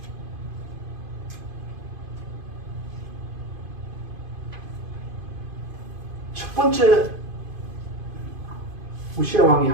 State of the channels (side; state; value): left; late; 2.5 ms